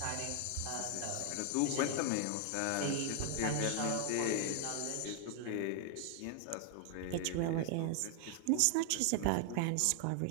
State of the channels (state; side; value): different; both; correlation 0.00